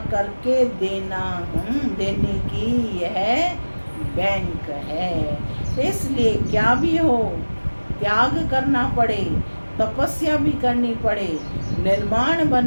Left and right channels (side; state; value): both; inverted; correlation -1.00